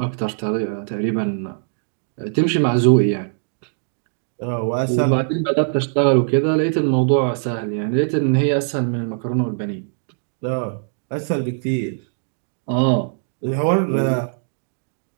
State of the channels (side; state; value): left; silent; digital silence